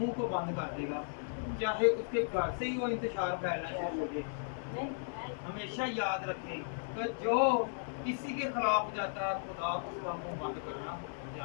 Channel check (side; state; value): right; silent; digital silence